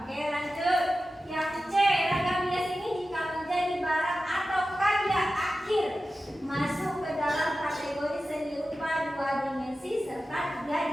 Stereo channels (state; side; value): normal; both; correlation 0.94